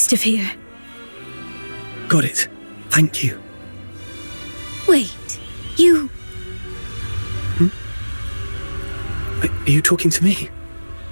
of here. Got it. Thank you. Wait, you... Are you talking to me?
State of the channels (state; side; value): inverted; both; correlation -1.00